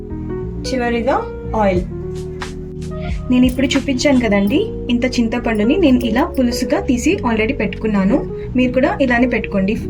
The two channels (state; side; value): identical; both; correlation 1.00